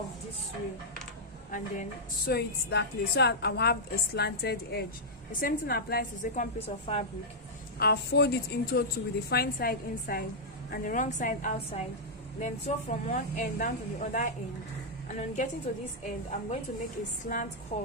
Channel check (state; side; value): normal; both; correlation -0.07